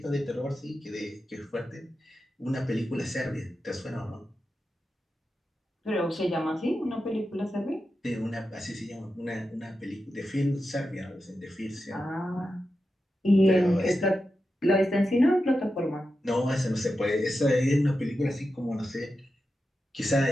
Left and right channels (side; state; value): both; normal; correlation 0.90